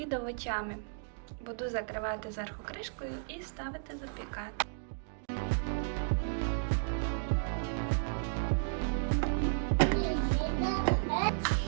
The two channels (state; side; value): silent; left; digital silence